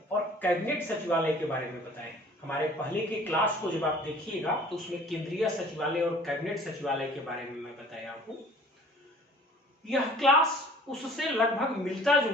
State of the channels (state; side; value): normal; both; correlation 0.50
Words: और कैबिनेट सचिवालय के बारे में बताएं। हमारे पहले के क्लास को जब आप देखिएगा तो उसमें केंद्रीय सचिवालय और कैबिनेट सचिवालय के बारे में मैं बताया हूं। यह क्लास उससे लगभग मिलता